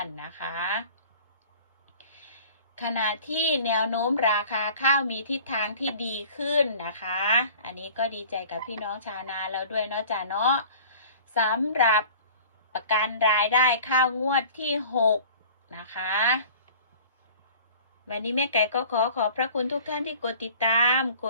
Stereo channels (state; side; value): inverted; both; correlation -0.45